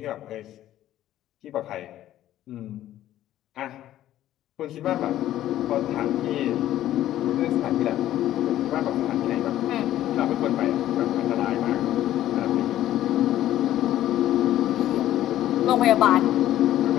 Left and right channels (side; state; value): right; quieter; 13.1 dB